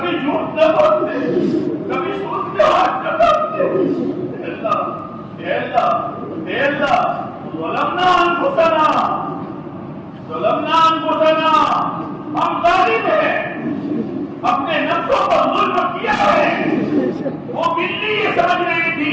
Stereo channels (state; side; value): identical; both; correlation 1.00